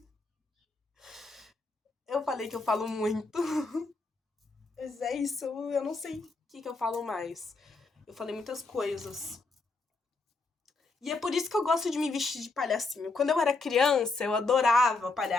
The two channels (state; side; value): quieter; right; 3.6 dB